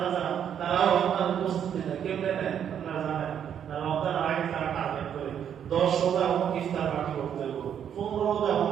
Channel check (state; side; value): quieter; left; 8.9 dB